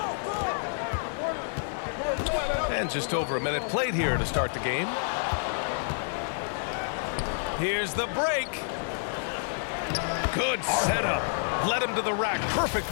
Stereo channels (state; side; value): silent; right; digital silence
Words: way. And just over a minute played here to start the game. Here's the break. Good setup. Led him to the rack